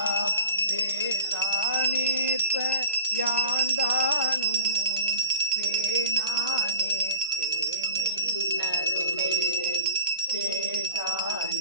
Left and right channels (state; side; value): inverted; both; correlation -0.44